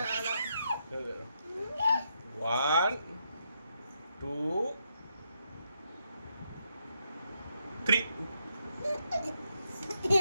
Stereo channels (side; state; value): both; inverted; correlation -0.80